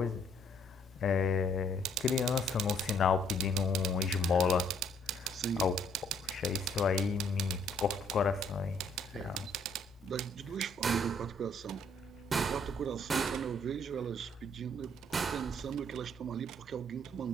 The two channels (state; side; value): normal; both; correlation 0.65